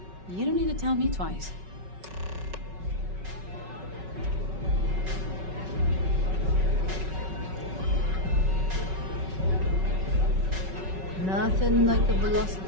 you don't need to tell me twice. Nothing like the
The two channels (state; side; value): late; left; 5.3 ms